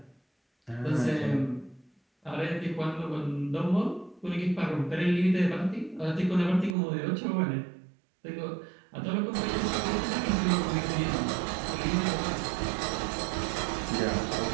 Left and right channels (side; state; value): left; drops out; at 6.8 s